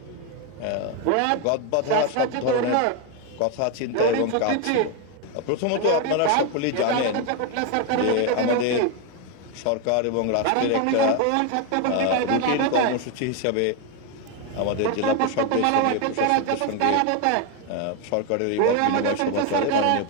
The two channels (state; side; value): different; both; correlation 0.02